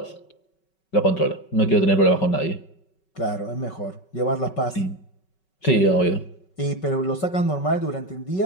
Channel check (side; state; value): right; late; 5.3 ms